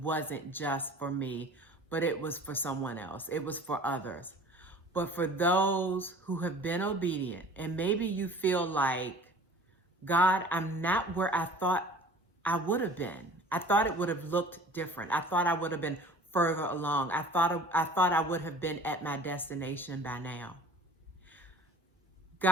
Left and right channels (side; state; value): both; normal; correlation 0.46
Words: just for me, but it was for someone else. It was for others. But for those who have been obedient, and maybe you feel like, God, I'm not where I thought I would have been. I thought it would have looked different. I thought I would have been further along. I thought I would have been at my destination by now.